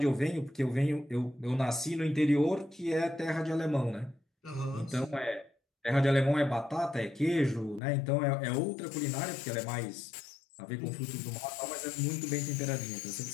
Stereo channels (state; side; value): drops out; right; at 7.8 s